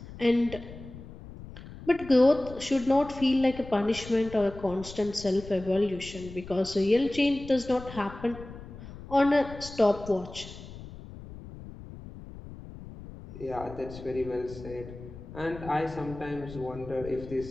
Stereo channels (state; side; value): noise; left; rumble, 14 dB below the sound